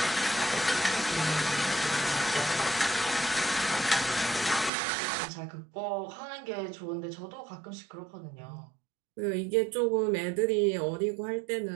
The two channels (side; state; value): left; drops out; at 4.7 s